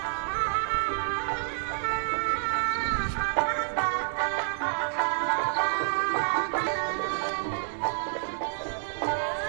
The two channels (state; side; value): silent; left; digital silence